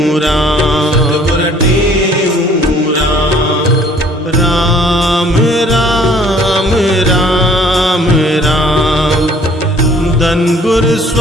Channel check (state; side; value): normal; both; correlation 0.57